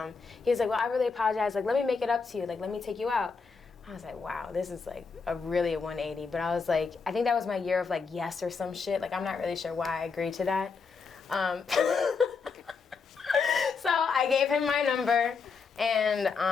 he was like, well, I really apologize. Let me make it up to you. Let me take you out. I was like, wow, this is really a 180. But I was like, I think that was my year of yes or some shit. I'm not really sure why I agreed to that. So I gave him my number, and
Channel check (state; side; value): quieter; right; 5.1 dB